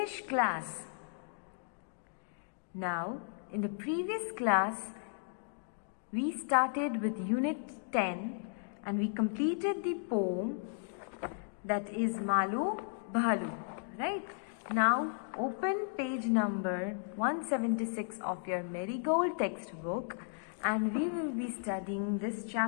class. Now, in the previous class, we started with Unit 10 and we completed the poem that is Malu Bhalu, right? Now, open page number 176 of your Marigold textbook and we will be studying this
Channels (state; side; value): silent; right; digital silence